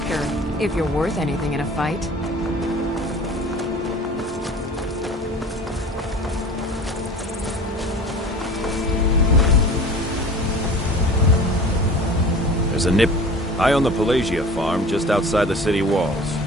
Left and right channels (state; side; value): normal; both; correlation 0.41